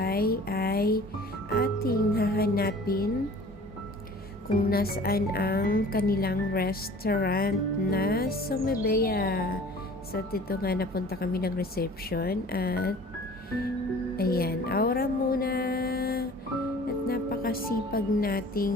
ay ating hahanapin kung nasaan ang kanilang restaurant na Sumebea. So, dito nga napunta kami ng reception at ayan, aura muna at napakasipag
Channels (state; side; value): normal; both; correlation 0.46